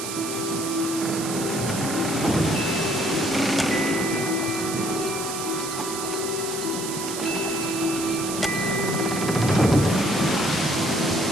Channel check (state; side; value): noise; right; hiss, 6 dB below the sound